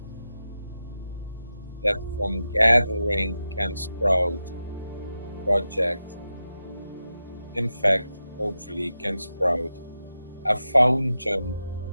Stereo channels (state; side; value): inverted; both; correlation -0.91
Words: that from gathering can sprout a project. In fact, hopefully can sprout a fountain